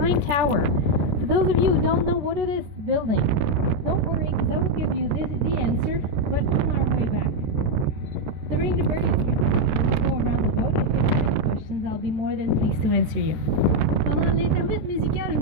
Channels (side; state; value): left; late; 14 ms